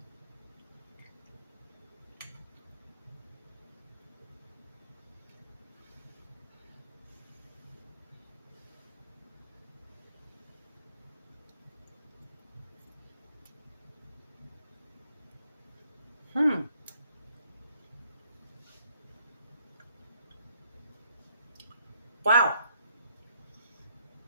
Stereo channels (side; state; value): both; inverted; correlation -0.69